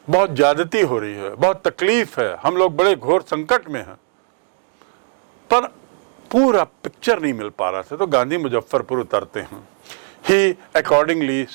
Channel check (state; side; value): silent; left; digital silence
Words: बहुत ज्यादती हो रही है, बहुत तकलीफ है, हम लोग बड़े घोर संकट में हैं, पर पूरा पिक्चर नहीं मिल पा रहा था। तो गांधी मुजफ्फरपुर उतरते हैं। He accordingly